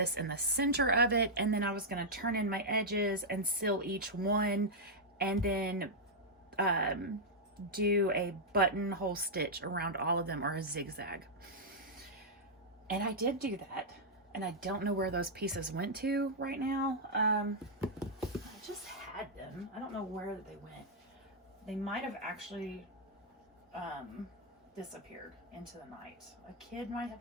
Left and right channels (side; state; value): both; normal; correlation -0.06